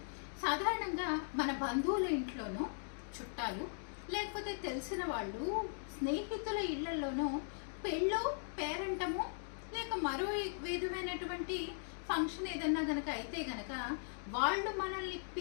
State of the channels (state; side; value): silent; right; digital silence